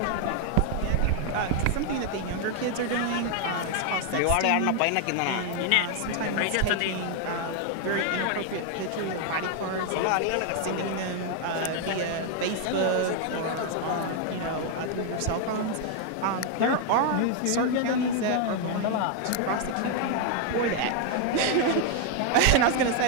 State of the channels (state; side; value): different; both; correlation 0.00